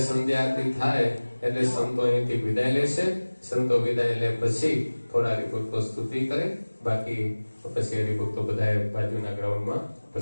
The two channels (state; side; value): inverted; both; correlation -1.00